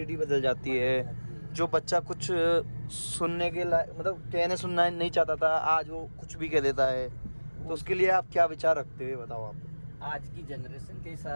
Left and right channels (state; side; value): inverted; both; correlation -1.00